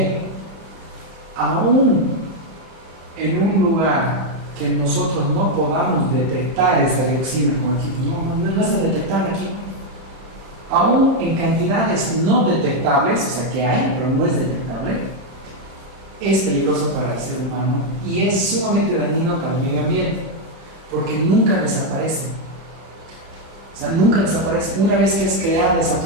Aún en un lugar que nosotros no podamos detectar esa dioxina con equipo, no está detectable aquí. Aún en cantidades no detectables, o sea que hay, pero no es detectable, es peligroso para el ser humano y es sumamente dañino para el medio ambiente, porque nunca desaparece. O sea, nunca desaparece. Una vez que es creada esa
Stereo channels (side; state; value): left; late; 31 ms